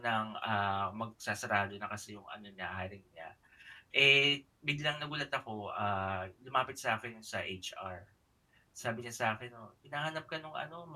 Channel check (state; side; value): identical; both; correlation 1.00